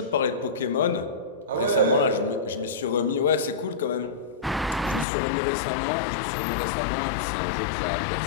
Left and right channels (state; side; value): drops out; right; at 5.1 s